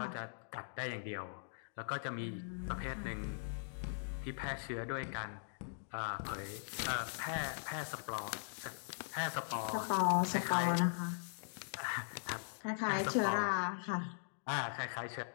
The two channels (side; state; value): right; silent; digital silence